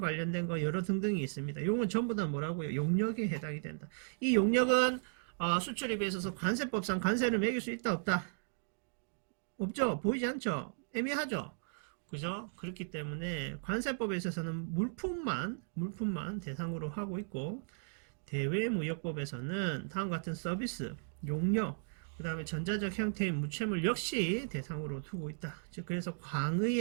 거, 여러 등등이 있습니다. 용은 전부 다 뭐라고요? 용역에 해당이 된다. 이 용역은 수출입에 있어서 관세법상 관세를 매길 수 있다, 없다? 없죠? 보이지 않죠? 애매하죠? 그죠? 그렇기 때문에 관세법에 있어서는 물품만 대상으로 하고 있고, 대외무역법에서는 다음과 같은 서비스, 용역, 그 다음에 전자적 형태의 무채물 역시 대상으로 두고 있다. 즉, 그래서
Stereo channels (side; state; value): left; silent; digital silence